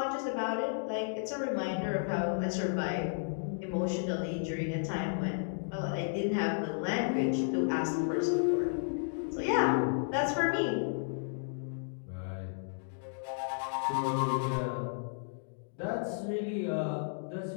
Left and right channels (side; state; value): right; silent; digital silence